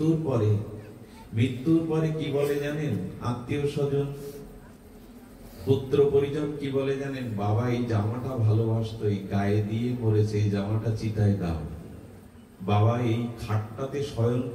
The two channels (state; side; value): identical; both; correlation 1.00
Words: পরে কি বলে জানেন? আত্মীয় স্বজন, পুত্র পরিজন কি বলে জানেন? বাবা এই জামাটা ভালোবাসতো, এই গায়ে দিয়ে মরেছে, এই জামাটা চিতায় দাও। বাবা এই খাটটাতে শয়ন